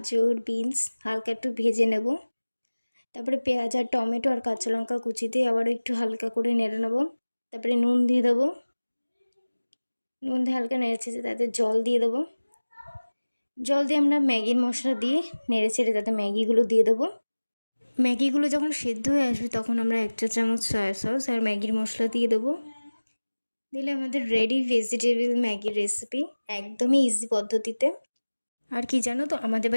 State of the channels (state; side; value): inverted; both; correlation -1.00